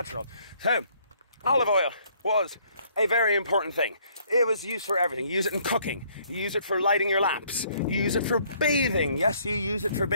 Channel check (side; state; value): both; inverted; correlation -0.64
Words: So, olive oil was a very important thing. It was used for everything. You use it in cooking. You use it for lighting your lamps. You use it for bathing. Yes, you use it for